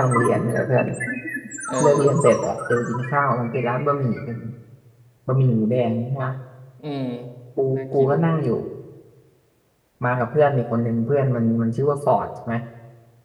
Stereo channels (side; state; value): both; identical; correlation 1.00